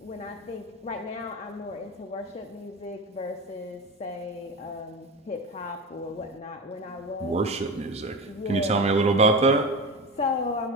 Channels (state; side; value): normal; both; correlation 0.26